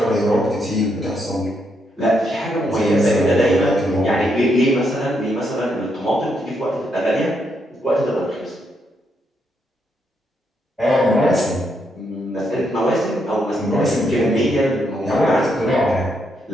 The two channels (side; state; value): both; normal; correlation 0.78